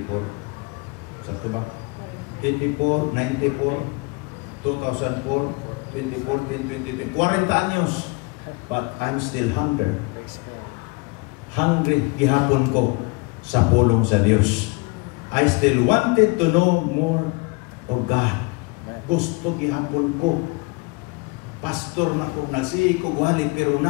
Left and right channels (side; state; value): right; quieter; 28.3 dB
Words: Sakto ba? 84, 94, 2004, 2014, 2020. 40 anyos. But I'm still hungry. Hungry gihapon ko sa pulong sa Dios. I still wanted to know more of God. Gusto gihapon ko. Pastor na ko, nagsihi ko wali, pero